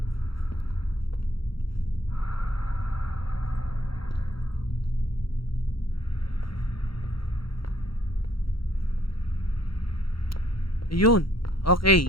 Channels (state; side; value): late; right; 0.74 ms